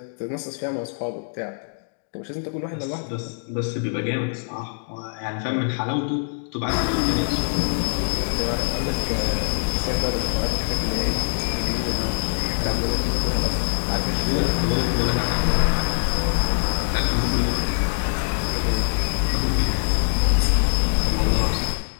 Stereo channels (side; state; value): right; silent; digital silence